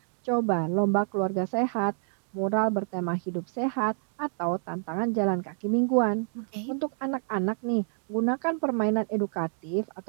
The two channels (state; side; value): silent; left; digital silence